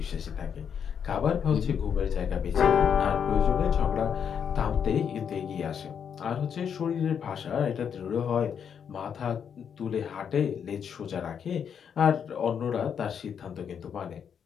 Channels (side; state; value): right; quieter; 7.6 dB